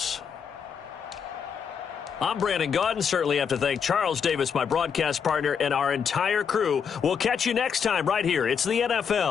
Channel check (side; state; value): right; quieter; 6.9 dB